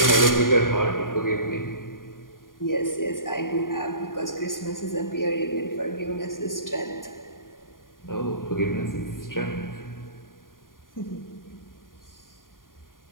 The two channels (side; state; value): right; late; 0.90 ms